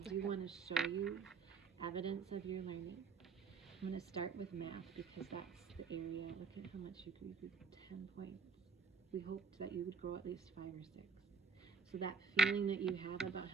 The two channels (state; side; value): quieter; left; 5.2 dB